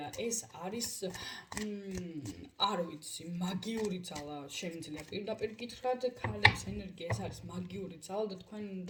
ეს არის არ ვიცი, მაგიური ძალა შემიძლია პირდაპირ გითხრათ, ქალების ენერგია ეს არის მაგიური ძალა და თქვენ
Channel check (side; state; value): both; identical; correlation 1.00